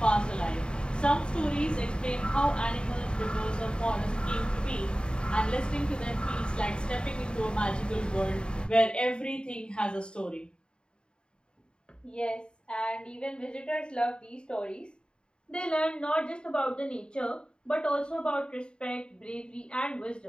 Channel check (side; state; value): right; late; 0.051 ms